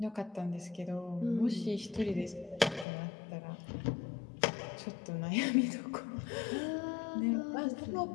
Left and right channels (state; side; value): drops out; right; at 2.9 s